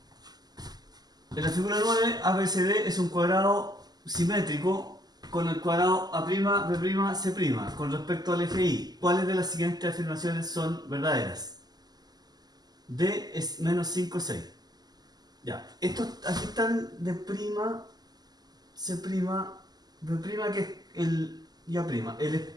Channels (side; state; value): left; late; 0.20 ms